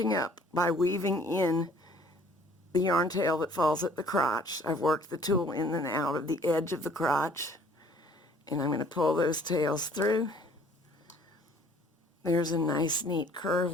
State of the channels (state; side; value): normal; both; correlation 0.56